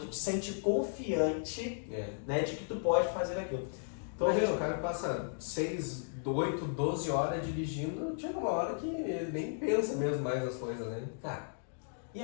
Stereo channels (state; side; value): silent; right; digital silence